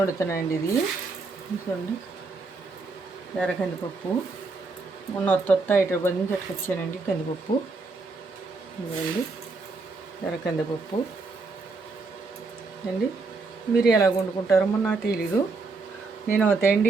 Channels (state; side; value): quieter; left; 4.0 dB